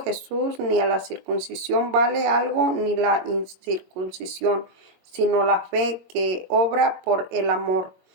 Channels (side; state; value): left; late; 22 ms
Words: Jesús ni a la circuncisión vale algo ni la incircuncisión, sino la fe que obra por el amor.